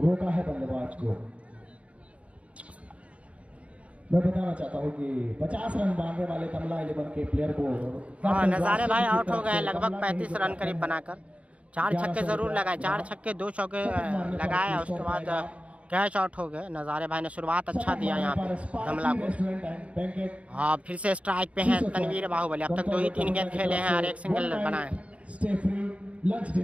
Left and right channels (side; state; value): left; late; 0.063 ms